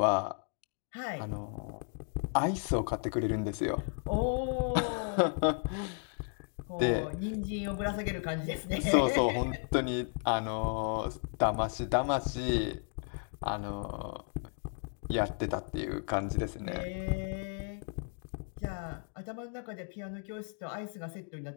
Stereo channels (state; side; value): silent; right; 55 dB below the other